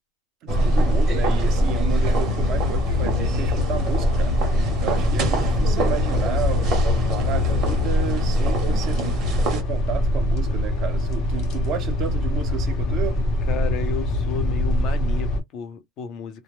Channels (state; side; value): normal; both; correlation 0.60